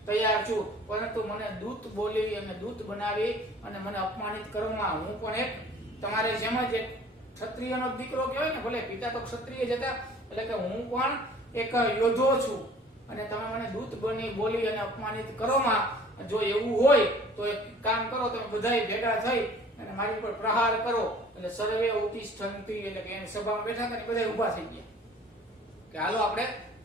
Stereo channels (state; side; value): normal; both; correlation 0.50